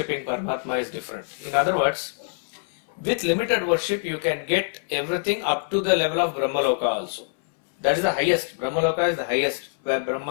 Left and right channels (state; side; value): silent; right; 62 dB below the other